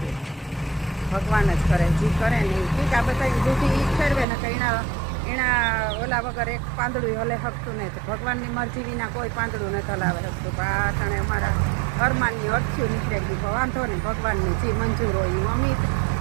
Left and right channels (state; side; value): drops out; left; at 4.2 s